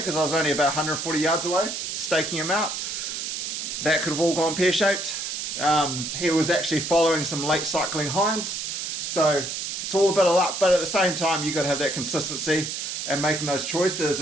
I was only about 140 yards away, staking him out. That could have all gone pear-shaped. He was actually following some late cycling hinds. So it's all a bit of luck, but at the same time, you've got to have that consistency and making those choices.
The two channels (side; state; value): right; noise; hiss, 4 dB below the sound